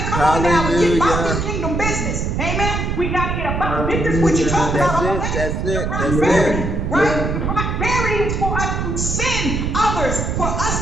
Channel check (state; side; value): noise; right; rumble, 1 dB below the sound